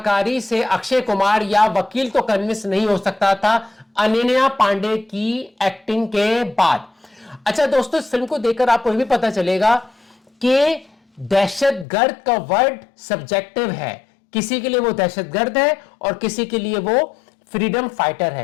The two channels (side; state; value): right; drops out; at 11.9 s